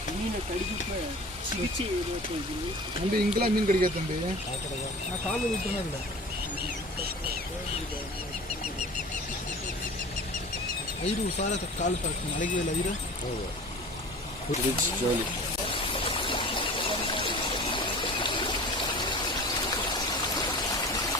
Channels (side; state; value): both; normal; correlation 0.39